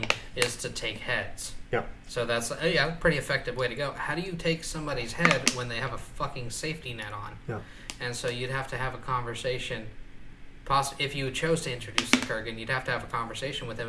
is to take heads. Yeah. So that's a pretty effective way to go. How do you take somebody's head when they have a fucking safety net on? Yeah. And so you'd have to have a conversation. If you chose to introduce the Kurgan, you'd have to have a conversation with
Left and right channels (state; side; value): identical; both; correlation 1.00